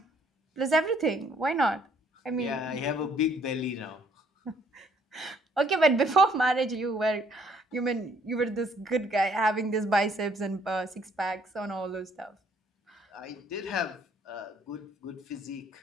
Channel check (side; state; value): both; normal; correlation 0.64